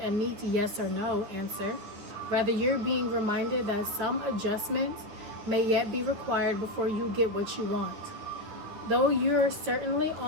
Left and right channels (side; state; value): left; late; 9.8 ms